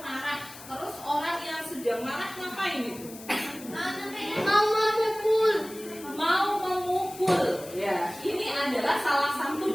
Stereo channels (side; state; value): left; noise; hiss, 16 dB below the sound